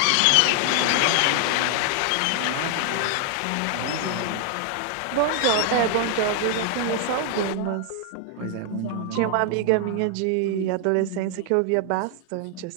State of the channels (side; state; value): both; different; correlation 0.00